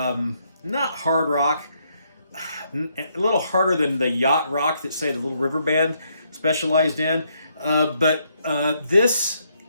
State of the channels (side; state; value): both; inverted; correlation -0.74